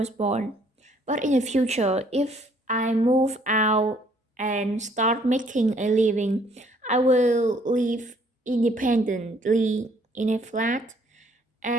born. But in the future, if I move out and start making a living, I will live independently in a flat,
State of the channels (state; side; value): normal; both; correlation 0.63